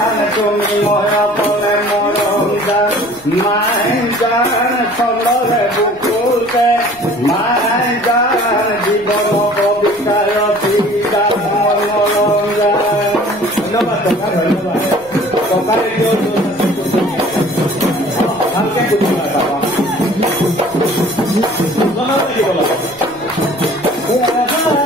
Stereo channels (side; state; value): left; noise; rumble, 27 dB below the sound